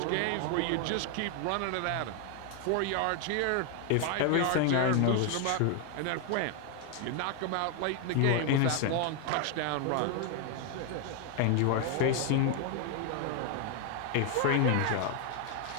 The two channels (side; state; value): both; different; correlation 0.01